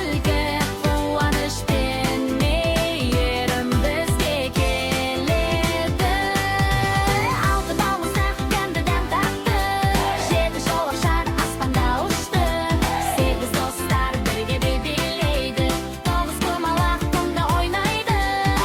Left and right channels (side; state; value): both; identical; correlation 1.00